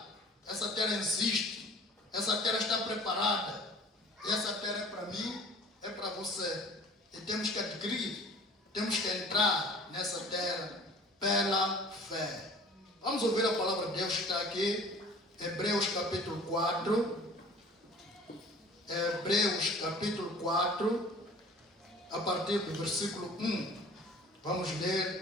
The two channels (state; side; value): normal; both; correlation 0.48